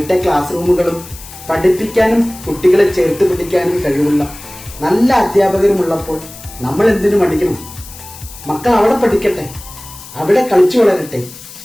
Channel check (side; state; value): left; noise; hiss, 16 dB below the sound